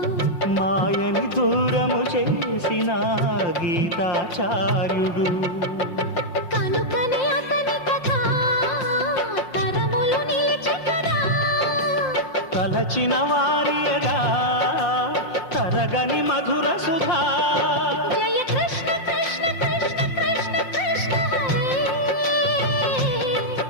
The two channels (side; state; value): right; late; 5.5 ms